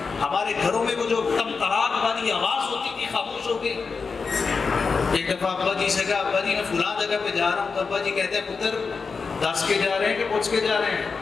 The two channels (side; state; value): right; quieter; 4.9 dB